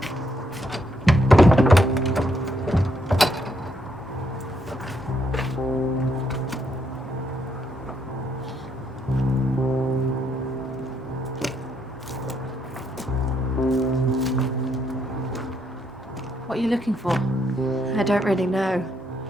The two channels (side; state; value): both; normal; correlation 0.75